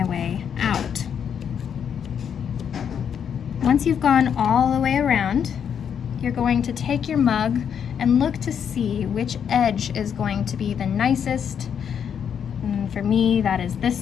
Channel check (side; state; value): right; quieter; 8.0 dB